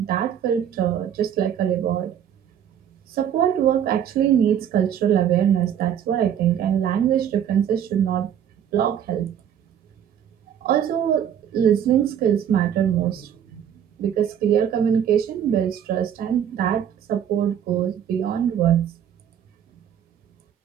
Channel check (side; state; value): left; quieter; 9.3 dB